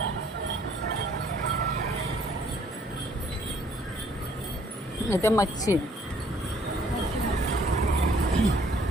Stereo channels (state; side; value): normal; both; correlation 0.61